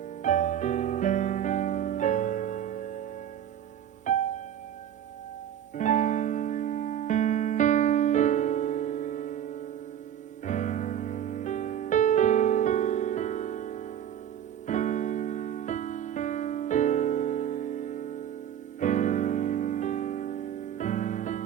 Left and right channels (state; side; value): quieter; left; 9.9 dB